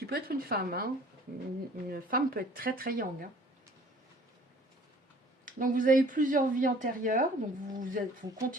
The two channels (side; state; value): both; normal; correlation 0.52